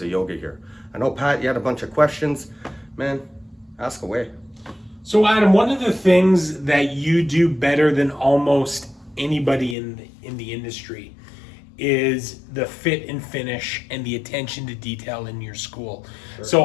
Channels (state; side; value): drops out; right; at 9.8 s